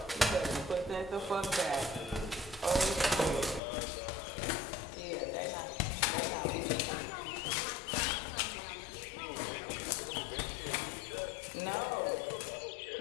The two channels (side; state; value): right; drops out; at 3.6 s